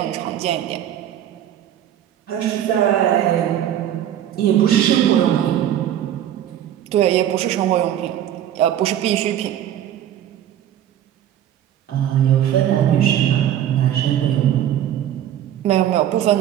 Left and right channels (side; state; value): left; quieter; 11.0 dB